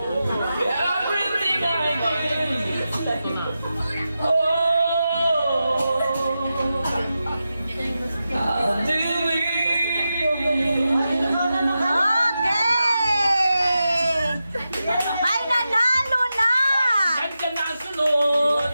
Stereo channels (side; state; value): both; inverted; correlation -0.91